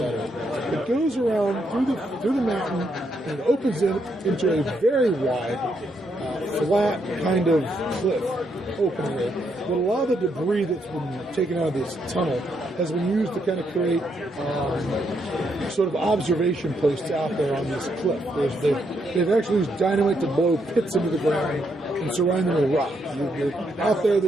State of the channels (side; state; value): both; normal; correlation 0.77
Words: of it. It goes around through the mountain and opens it into a very wide, flat kind of cliff opening there. But a lot of the debris that's been taken out of this tunnel has been used to kind of create sort of observation posts out there on this cliff. They've actually used dynamite to blow pits into the ground and surround them with rock. Out there,